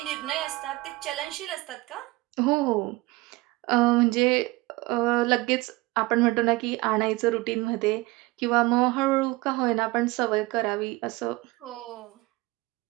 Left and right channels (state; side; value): quieter; left; 21.6 dB